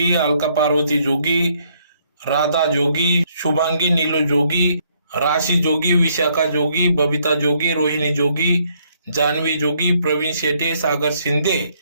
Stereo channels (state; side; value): inverted; both; correlation -0.69